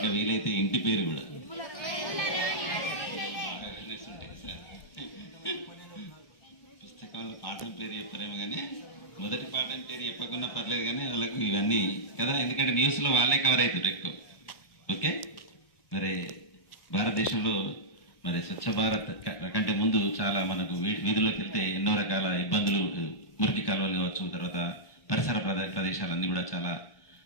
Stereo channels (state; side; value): late; right; 1.1 ms